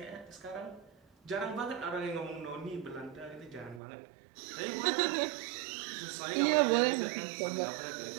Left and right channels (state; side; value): drops out; left; at 3.8 s